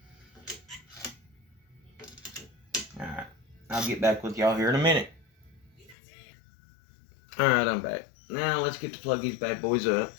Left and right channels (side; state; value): right; drops out; at 6.0 s